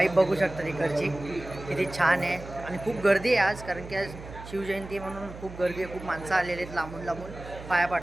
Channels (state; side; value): noise; right; hum, 14 dB below the sound